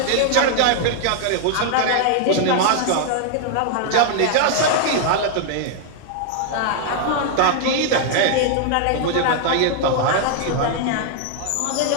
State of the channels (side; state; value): both; different; correlation 0.00